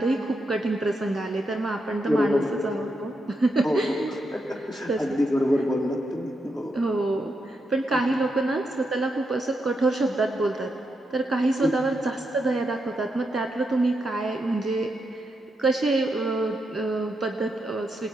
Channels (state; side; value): normal; both; correlation 0.83